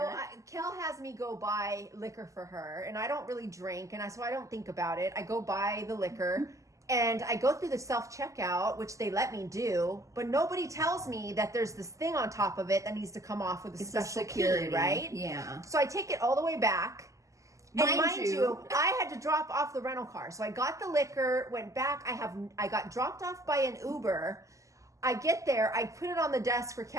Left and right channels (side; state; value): left; late; 0.16 ms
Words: Kel has me go buy liquor for her, and I don't really drink, and so I don't think about it. I go buy the liquor, and I go through the self-checkout, which they let me do, but nobody tells me that there's this thing on top of it that needs to come off with a special key, right? Yeah. So I take it all the way back. And mind you, I had to drop off the rental car. So I got the liquor, went back. I got dropped off by an Uber. I get there. I put it on the desk for